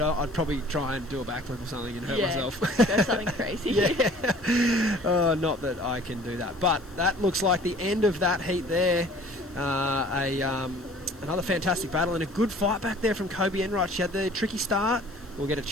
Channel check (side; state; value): left; noise; hiss, 28 dB below the sound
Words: probably try and do a backflip or something and hurt myself. Go something crazy. Yeah. Not that I can do that. But that looks like the end of that heat there. Another fantastic battle and a good fight back there from Kobe Enright. She had the tricky start. We'll get a